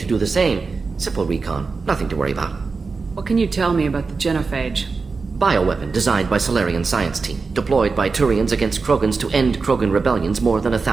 do the same. Simple recon, nothing to worry about. What can you tell me about the genophage? Bioweapon designed by Salarian science team, deployed by Turians against Krogans to end Krogan rebellions more than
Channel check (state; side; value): quieter; left; 4.5 dB